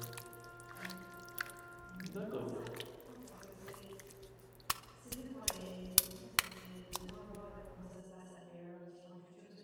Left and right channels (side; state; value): both; identical; correlation 1.00